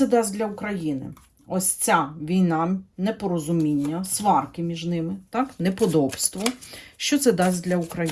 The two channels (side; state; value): both; identical; correlation 1.00